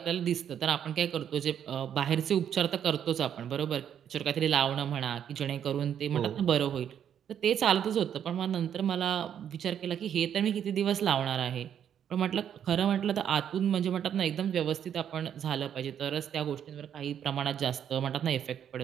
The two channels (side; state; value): left; quieter; 9.1 dB